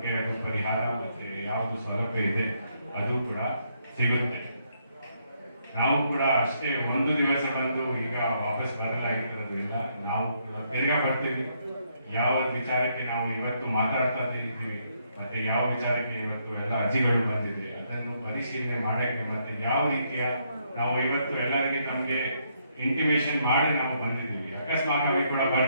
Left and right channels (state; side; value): inverted; both; correlation -0.74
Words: ಅದು ಪರಿಹಾರ ಮತ್ತೆ ಯಾವುದು ಸೌಲಭ್ಯ ಇದೆ ಅದು ಕೂಡ ಸಿಗುತ್ತೆ. ನಾವು ಕೂಡ ಅಷ್ಟೇ ಒಂದು ದಿವಸ ಬಂದು ಈಗ ವಾಪಸ್ ಬರಲಾಗಿರೋದಿಲ್ಲ. ನಾವು ಬೇಗ ಬರ್ತೀವಿ. ಯಾವ ವಿಚಾರಕ್ಕೆ ನಾವು ಇವತ್ತು ಮಾತಾಡ್ತಾ ಇದ್ದೀವಿ ಮತ್ತೆ ಯಾವ ವಿಚಾರಕ್ಕೆ ಇವತ್ತು ಎಲ್ಲ ಅರ್ಜಿಗಳು ಬಂದಿದೆ ಅದನ್ನು ಪರಿಶೀಲನೆ ಮಾಡಕ್ಕೆ ಮತ್ತೆ ಯಾವ ರೀತಿಯ ನಾವು ಇವತ್ತು ಎಲ್ಲರಿಗೆ ನಮಗೆ ಇಂಟಿಮೇಷನ್ ಮಾಡಿ ನಾವು ಬಂದಿದ್ದೀವಿ. ಅಕಸ್ಮಾತ್ ಕೂಡ